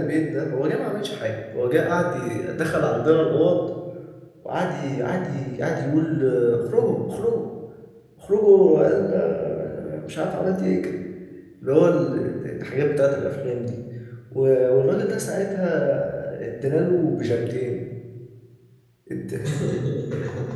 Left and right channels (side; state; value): both; identical; correlation 1.00